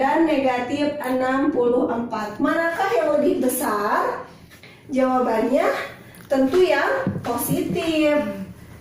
negatif 64. Manakah yang lebih besar? Jawabannya tentu yang positif.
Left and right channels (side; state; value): both; identical; correlation 1.00